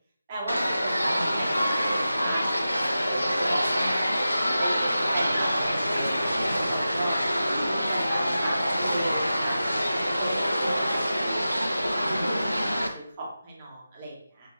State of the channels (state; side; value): inverted; both; correlation -0.93